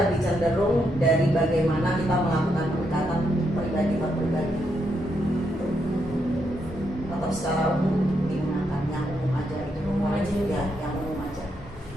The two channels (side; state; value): both; normal; correlation 0.80